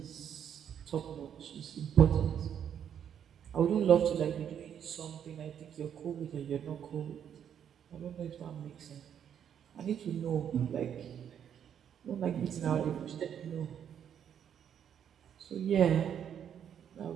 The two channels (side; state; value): left; quieter; 8.9 dB